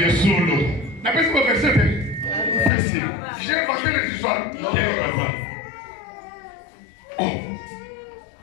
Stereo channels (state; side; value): drops out; right; at 2.7 s